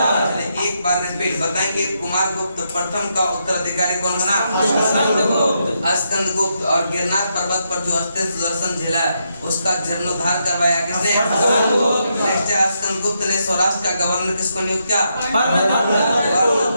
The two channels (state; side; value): inverted; both; correlation -0.80